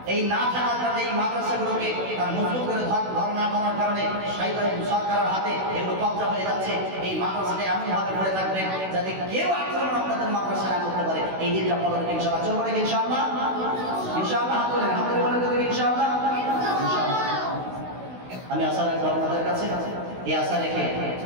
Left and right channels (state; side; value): late; left; 16 ms